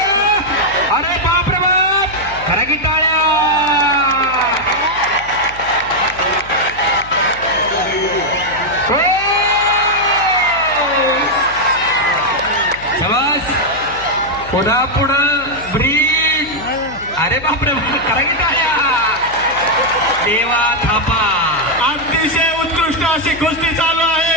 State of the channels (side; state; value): left; noise; hum, 18 dB below the sound